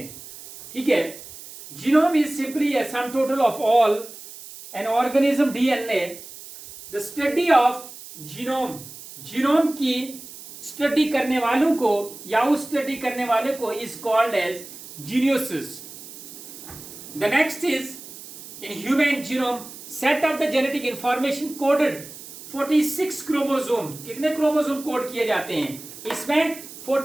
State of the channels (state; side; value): noise; right; hiss, 15 dB below the sound